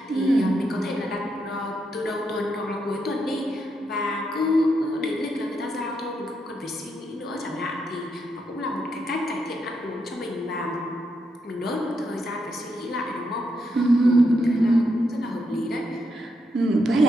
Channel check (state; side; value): normal; both; correlation 0.81